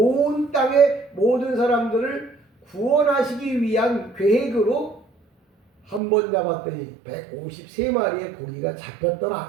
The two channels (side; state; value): left; drops out; at 6.0 s